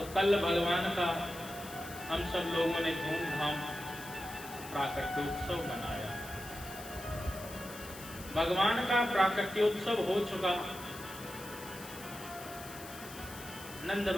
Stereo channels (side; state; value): left; noise; hiss, 14 dB below the sound